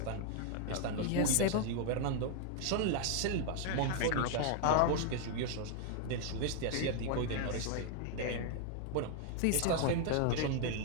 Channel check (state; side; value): different; both; correlation 0.00